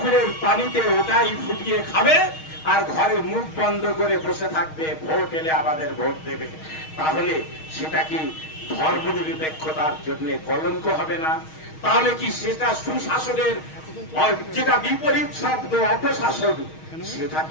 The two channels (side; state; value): right; late; 6.4 ms